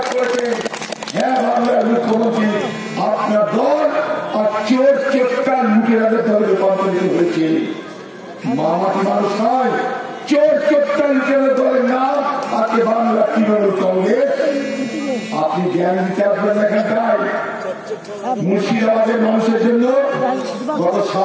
করেছেন। হ্যাঁ, বাংলার মুখ্যমন্ত্রী আপনার দল আর চোর চোরটা লুটেরাদের দলে রূপান্তরিত হয়েছে। মামাটি মানুষ নয়, চোর চোরটা লুটেরাদের দলের নাম আজকে বাংলা তৃণমূল কংগ্রেস। আপনি জ্ঞান দিতে আসবেন এখানটায়। মুর্শিদাবাদের মানুষের জন্য গত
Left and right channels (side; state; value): both; identical; correlation 1.00